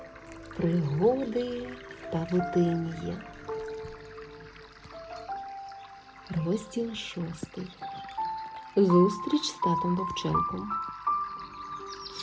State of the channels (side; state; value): both; identical; correlation 1.00